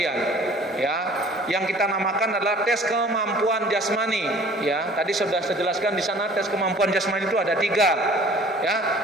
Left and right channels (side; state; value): both; normal; correlation 0.50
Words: ya. Yang kita namakan adalah tes kemampuan jasmani, ya. Tadi sudah saya jelaskan di sana tes kemampuan jasmani itu ada 3,